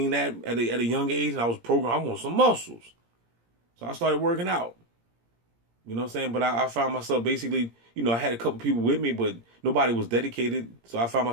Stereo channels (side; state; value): left; late; 17 ms